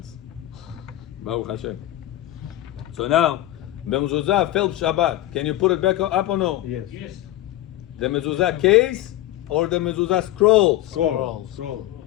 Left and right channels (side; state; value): right; quieter; 14.8 dB